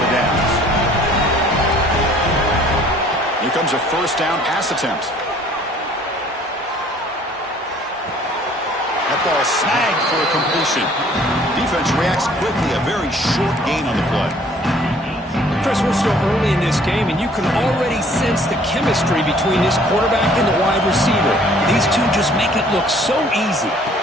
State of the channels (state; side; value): normal; both; correlation 0.56